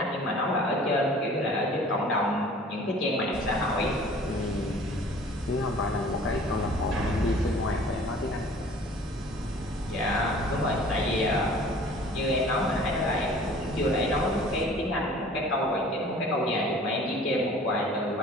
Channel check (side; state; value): both; normal; correlation 0.48